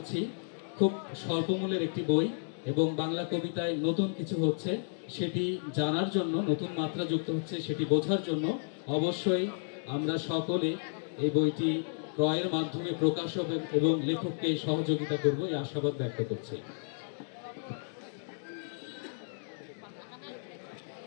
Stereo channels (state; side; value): silent; right; digital silence